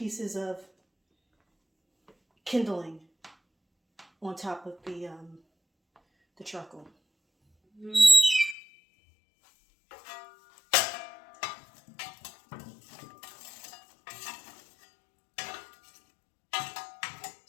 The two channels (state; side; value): drops out; right; at 8.6 s